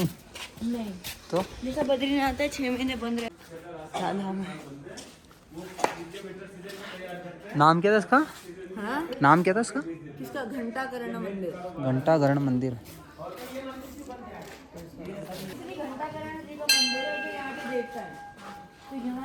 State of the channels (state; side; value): identical; both; correlation 1.00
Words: नहीं तो जैसा बद्रीनाथ है 6 महीने बंद रहे। धाम है। नाम क्या था इसका? हाँ नाम क्या था इसका? किसका? घंटाकरण मंदिर। घंटाघरण मंदिर। घंटाकरण जी का मंदिर है जो यहाँ के देवता है। तो